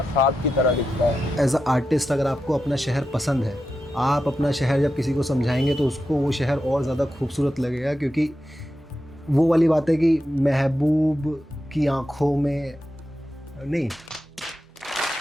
ख्वाब की तरह दिखता है। एज अ आर्टिस्ट अगर आपको अपना शहर पसंद है, आप अपना शहर जब किसी को समझाएंगे तो उसको वो शहर और ज़्यादा खूबसूरत लगेगा, क्योंकि वो वाली बात है कि महबूब की आँखों में नहीं,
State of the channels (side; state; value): both; normal; correlation 0.89